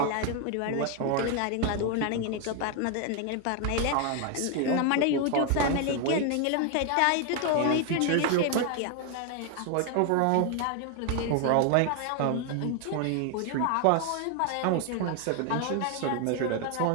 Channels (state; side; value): different; both; correlation 0.01